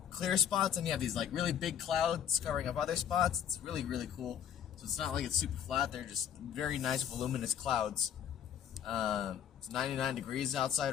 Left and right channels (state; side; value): quieter; right; 9.1 dB